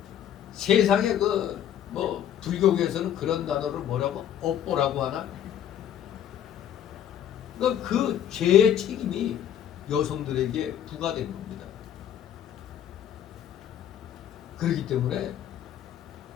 세상에 불교계에서는 그런 단어를 뭐라고? 업보라고 하나? 그 죄의 책임이 여성들에게 부과된 겁니다. 그렇기 때문에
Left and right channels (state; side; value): quieter; right; 10.0 dB